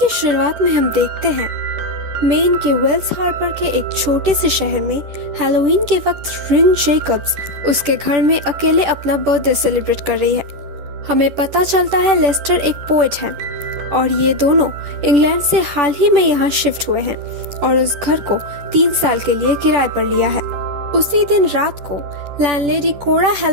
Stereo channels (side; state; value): left; late; 10 ms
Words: शुरुआत में हम देखते हैं मेन के वेल्स हार्बर के एक छोटे से शहर में हैलोवीन के वक्त रिन जेकब्स उसके घर में अकेले अपना बर्थडे सेलिब्रेट कर रही है। हमें पता चलता है लेस्टर एक पोएट है और ये दोनों इंग्लैंड से हाल ही में यहाँ शिफ्ट हुए हैं और उस घर को 3 साल के लिए किराए पर लिया है। उसी दिन रात को लैंडलेडी कोरा